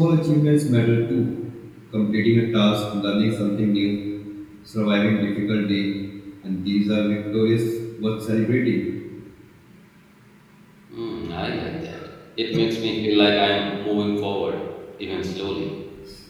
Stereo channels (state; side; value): identical; both; correlation 1.00